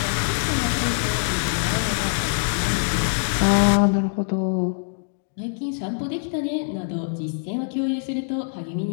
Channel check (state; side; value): silent; right; digital silence